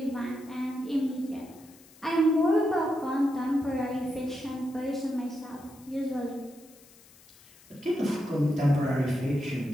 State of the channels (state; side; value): noise; left; hiss, 25 dB below the sound